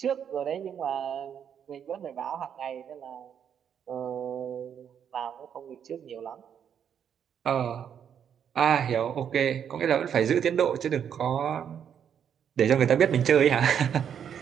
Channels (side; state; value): left; quieter; 8.4 dB